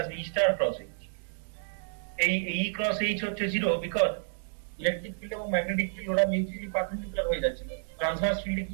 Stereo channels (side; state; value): left; silent; digital silence